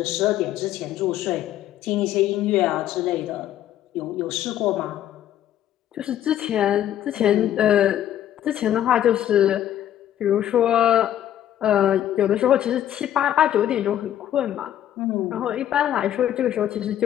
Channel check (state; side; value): quieter; right; 11.5 dB